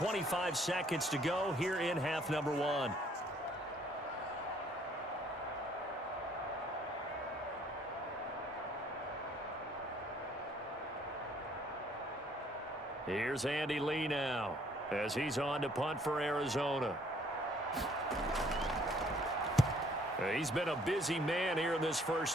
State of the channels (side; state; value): both; normal; correlation 0.61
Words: seconds to go here in half number 1. Here's Andy Lee now as he's on to punt for Arizona. He's been a busy man here in this